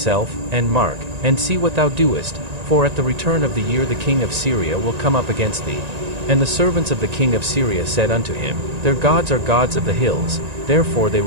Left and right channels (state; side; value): late; left; 1.9 ms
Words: and mark, and see what thou doest, for at the return of the year the king of Syria will come up against thee. And the servants of the king of Syria said unto him, Their gods are gods of the hills, therefore they